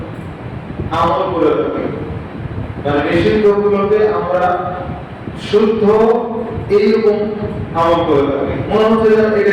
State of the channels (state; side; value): identical; both; correlation 1.00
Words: আমল করে থাকি। মানে নিষিদ্ধগুলোকে আমরা শুদ্ধ এইরকম আমল করে থাকি, মনে হচ্ছে যেন